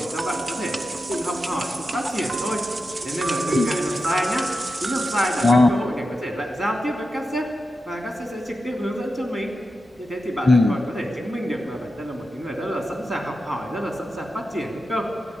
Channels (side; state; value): both; normal; correlation 0.90